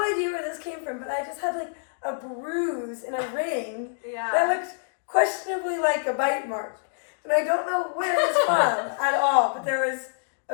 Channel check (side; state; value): right; silent; digital silence